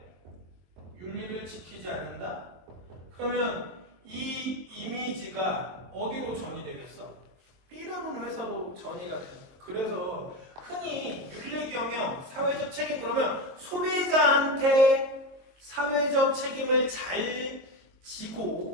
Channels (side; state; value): left; late; 22 ms